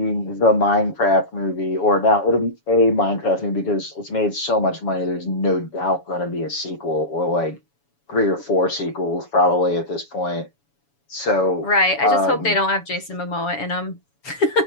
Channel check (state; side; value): late; right; 7.1 ms